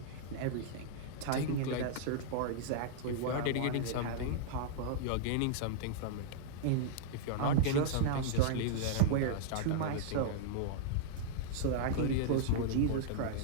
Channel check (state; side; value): different; both; correlation -0.02